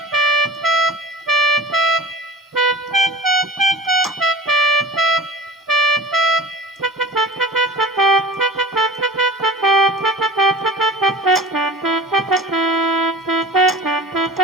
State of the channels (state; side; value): normal; both; correlation 0.38